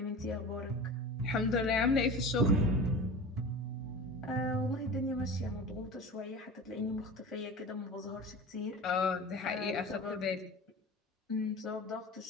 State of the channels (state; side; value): normal; both; correlation 0.34